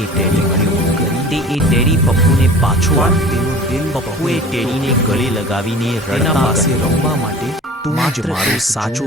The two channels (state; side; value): normal; both; correlation 0.42